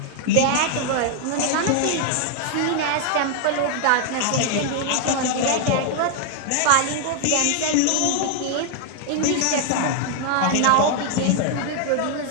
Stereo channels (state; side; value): different; both; correlation 0.00